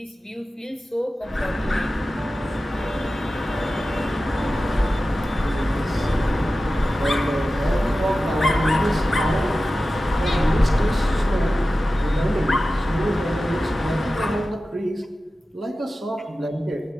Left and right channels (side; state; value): both; normal; correlation 0.94